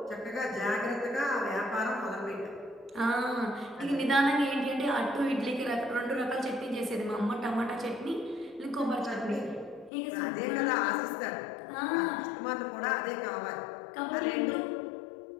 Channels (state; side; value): drops out; right; at 9.9 s